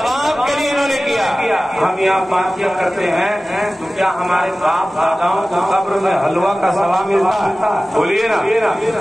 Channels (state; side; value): normal; both; correlation 0.97